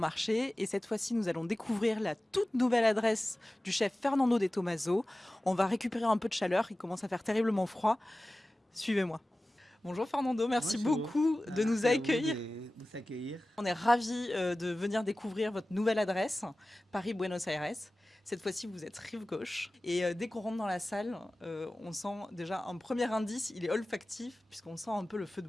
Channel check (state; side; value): normal; both; correlation 0.96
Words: et cette fois-ci nous allons découvrir la toute nouvelle adresse du chef Fernando de Tomaso. On va récupérer un peu de chaleur, il commence à faire terriblement froid. Suivez-moi. Bonjour Fernando, merci Bonjour, beaucoup de nous merci à vous accueillir. de vous accueillir. On est ravis de venir découvrir votre nouvelle adresse, Paris-Buenos Aires. Cette fois-ci, vous êtes rive gauche. Et dès qu'on rentre dans la salle, on sent déjà un premier indice, il est olfactif, puisqu'on sent un peu le feu de